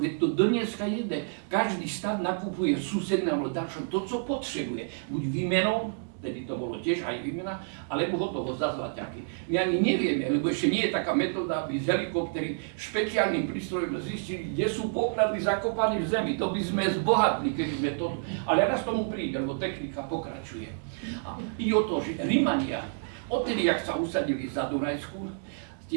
veď to dneska jede. Každý štát nakupuje susednému dačom to, co potrebuje. Buď výmenou, tedy to bolo tiež aj výmena, alebo hotovo za zlaťaky. My ani nevieme, lebo ešte nie je taká metóda, aby z helikoptery špeciálnym prístrojom zistili, kde sú poklady zakopané v zemi. To by sme zbohatli, keby sme to... Ale raz tomu príde, lebo technika pokračuje. A ide o to, že Rimania, odtedy, jak sa usadili za Dunajsku,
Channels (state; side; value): silent; left; digital silence